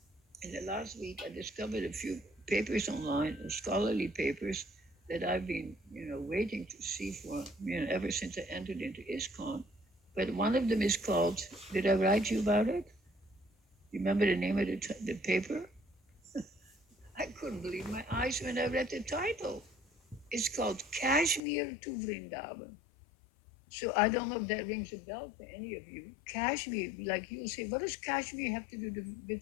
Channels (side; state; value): right; drops out; at 21.4 s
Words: in the last week, I discovered a few papers online, scholarly papers that I've been, waiting to see for, ever since I entered into ISKCON. But one of them is called, did I write you about it? You remember the name of the paper? I couldn't believe my eyes when I read the title. It's called Kashmir to Vrindavan. So I don't know if that rings a bell for any of you. Kashmir, like you'll say, what does Kashmir have to do